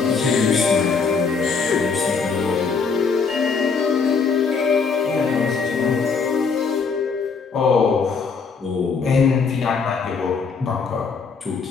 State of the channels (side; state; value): right; quieter; 5.2 dB